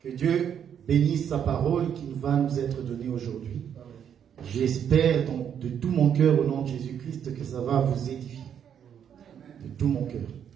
Dieu bénisse sa parole qui va nous être donnée aujourd'hui. J'espère donc de tout mon cœur au nom de Jésus-Christ que ça va vous édifier. De tout mon cœur.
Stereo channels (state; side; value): quieter; left; 8.6 dB